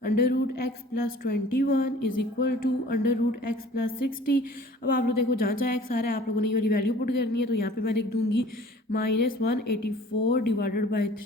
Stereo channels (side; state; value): both; normal; correlation 0.49